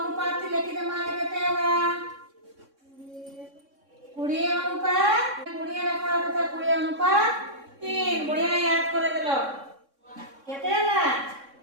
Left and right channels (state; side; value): late; left; 3.6 ms